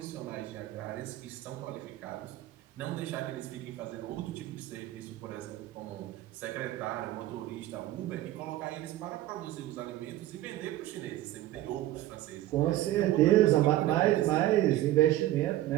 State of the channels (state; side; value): quieter; left; 14.8 dB